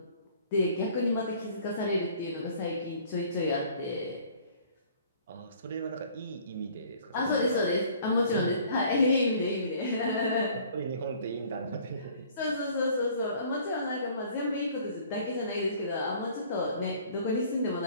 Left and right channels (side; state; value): both; inverted; correlation -0.54